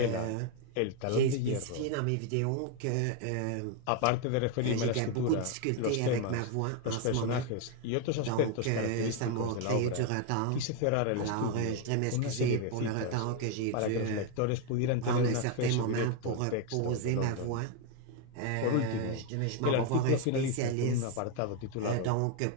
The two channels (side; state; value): both; different; correlation 0.01